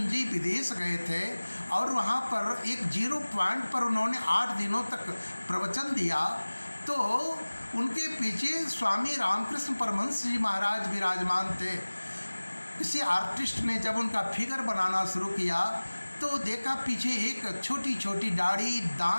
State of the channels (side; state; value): both; inverted; correlation -1.00